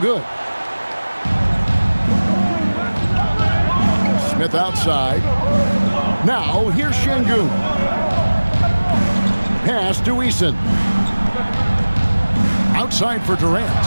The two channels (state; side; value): inverted; both; correlation -1.00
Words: Smith outside. Now, here's Şengün. Pass to Eason. Outside for Durant.